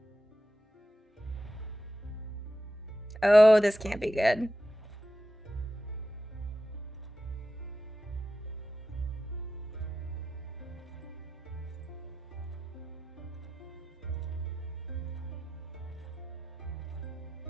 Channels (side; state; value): both; normal; correlation 0.90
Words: Oh, this can't be good.